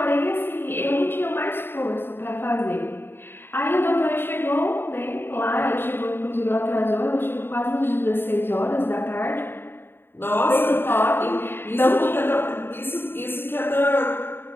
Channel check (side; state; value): right; late; 0.10 ms